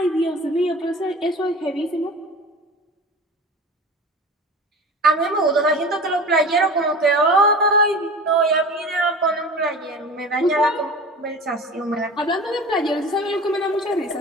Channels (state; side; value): normal; both; correlation 0.36